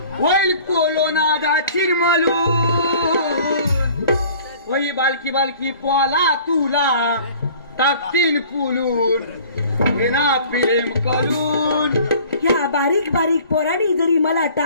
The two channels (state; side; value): inverted; both; correlation -0.49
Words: होईल कोलोना जाशील मलून. वही बालकी बालकी पोला तुला टाकतीन पुलून. हे ना प्रेम करून. या बारीक बारीक पोराणी जरी मला